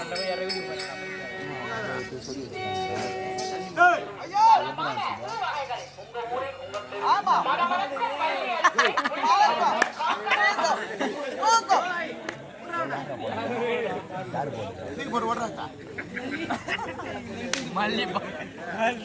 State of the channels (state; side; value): identical; both; correlation 1.00